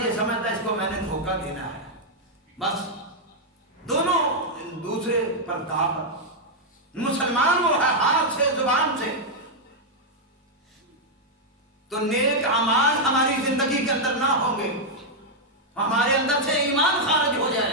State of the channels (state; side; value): normal; both; correlation -0.03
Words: یہ سمجھتا ہے اس کو میں نے دھوکہ دینا ہے. بس دونوں دوسرے پر داغ. مسلمان وہ ہے ہاتھ سے زبان سے. تو نیک اعمال ہماری زندگی کے اندر نہ ہوں گے، ہمارے اندر سے ایمان خارج ہو